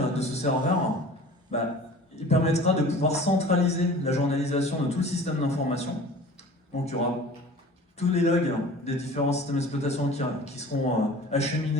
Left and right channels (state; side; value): normal; both; correlation 0.42